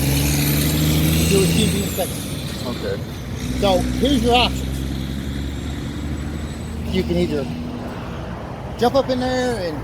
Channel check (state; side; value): identical; both; correlation 1.00